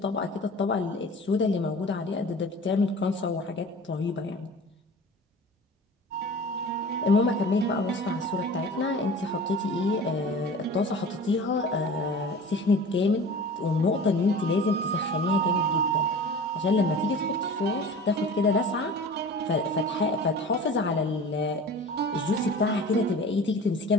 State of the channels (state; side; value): normal; both; correlation 0.39